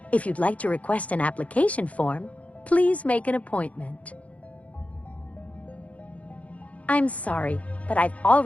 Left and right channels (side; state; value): right; late; 0.066 ms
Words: If you'd like to request an application form, please make an appointment. I'm sorry, but I've